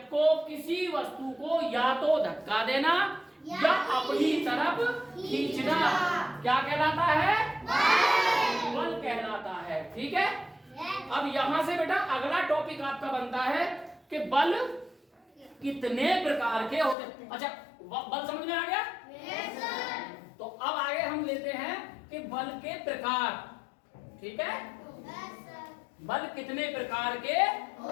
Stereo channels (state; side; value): drops out; right; at 16.9 s